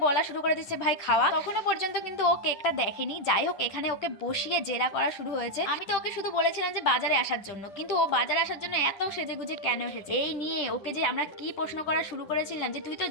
বলা শুরু করে দিচ্ছে ভাই খাওয়া। তখনও পর্যন্ত কিন্তু ও কেকটা দেখেনি। যাই হোক, এখানে ওকে বসিয়ে জেরা করা শুরু হয়েছে। আমি তো ওকে শুধু বলেছিলাম যে বাজারে আসার জন্য, কিন্তু ও বাজারে আসার জন্য এত সেজে গুজে কেন এসেছে এই নিয়ে ওকে যে আমরা কি প্রশ্ন করা শুরু করেছিলাম যে তুই তো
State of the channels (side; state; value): right; late; 10 ms